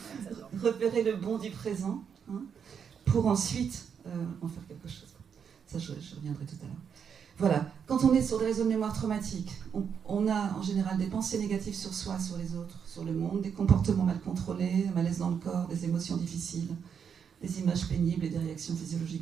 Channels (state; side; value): quieter; left; 7.2 dB